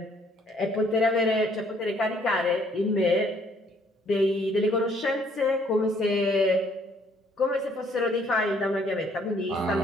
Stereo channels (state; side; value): normal; both; correlation 0.64